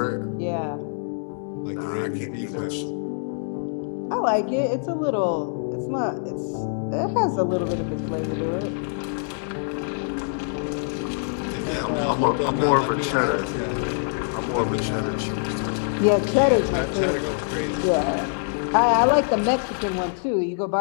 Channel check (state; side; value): silent; right; digital silence